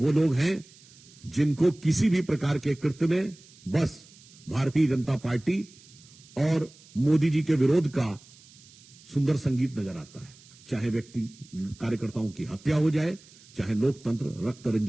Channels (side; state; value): right; noise; hiss, 24 dB below the sound